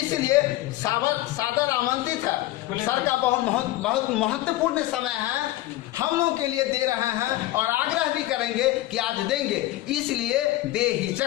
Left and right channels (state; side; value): quieter; right; 16.5 dB